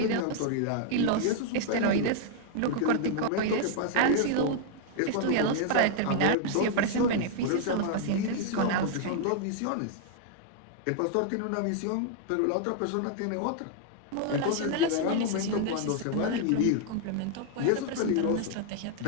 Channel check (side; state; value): both; different; correlation 0.00